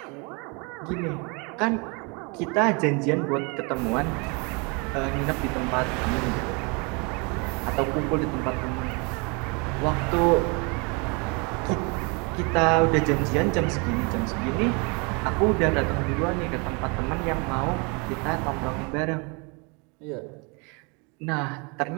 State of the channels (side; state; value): left; quieter; 31.3 dB